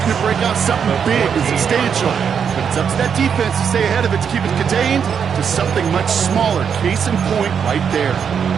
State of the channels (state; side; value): quieter; left; 7.2 dB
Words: to break out something big and substantial. But it's up to that defense to stay ahead of it, to keep it contained to something much smaller. Case in point right there.